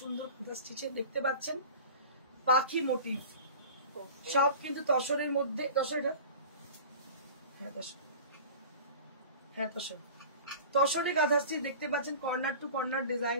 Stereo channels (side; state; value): both; inverted; correlation -0.39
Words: সুন্দর Katha stitch এ দেখতে পাচ্ছেন পাখি মোটিভ, সব কিন্তু তসরের মধ্যে। তসরটা তসরে কাঁথা স্টিচ দেখতে পাচ্ছেন, corner to corner design,